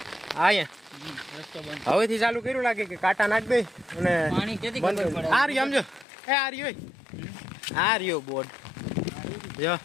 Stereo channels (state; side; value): drops out; right; at 6.1 s